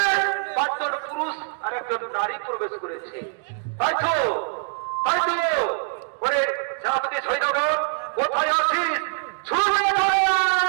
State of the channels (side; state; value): left; silent; 57 dB below the other